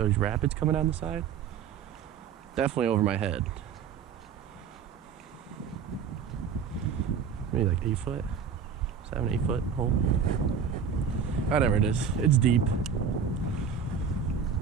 rapids coming down the side. Definitely over my head. Maybe like 8 foot, 7-8 foot hole. Whatever it is, it's deep.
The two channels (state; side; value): quieter; left; 6.9 dB